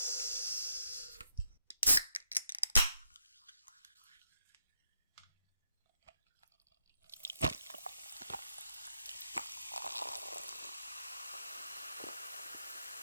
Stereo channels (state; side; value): inverted; both; correlation -0.79